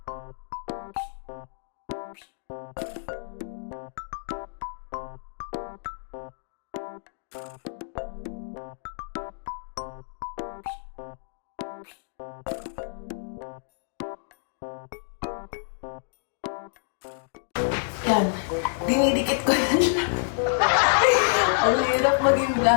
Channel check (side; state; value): right; silent; digital silence